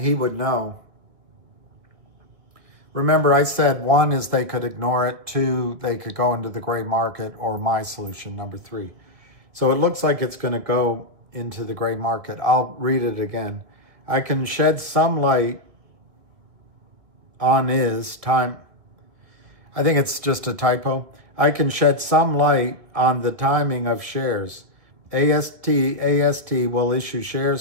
would know. Remember, I said 1 is they could ignore it. 2, they could go into the gray market, or my solution, number 3. So it looks like it's going to go into the gray market. I'll read it again. I can shed some light on his time. I think it's just a typo. I can shed some light on the timing of shares. AST will issue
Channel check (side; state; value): left; late; 2.1 ms